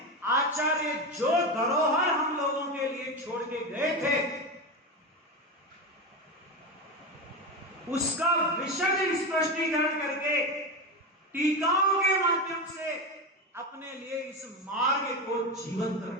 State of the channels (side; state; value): both; normal; correlation 0.18